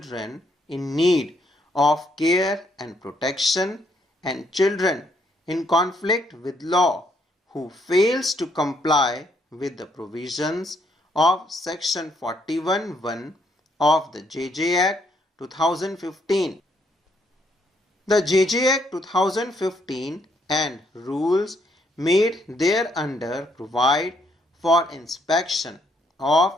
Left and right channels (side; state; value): both; normal; correlation 0.71